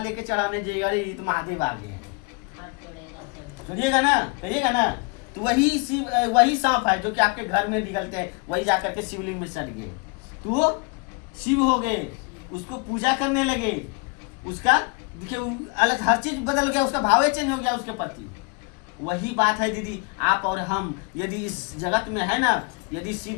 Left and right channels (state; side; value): quieter; right; 32.4 dB